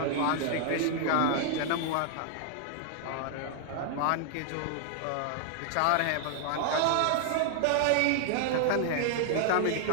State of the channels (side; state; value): both; different; correlation 0.00